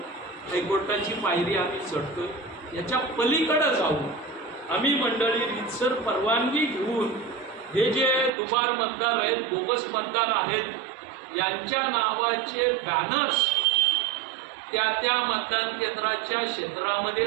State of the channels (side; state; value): left; drops out; at 8.3 s